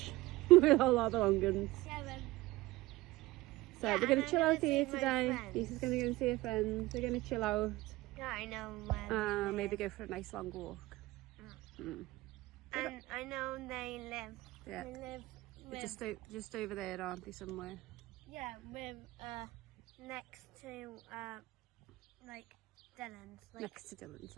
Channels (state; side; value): quieter; left; 19.3 dB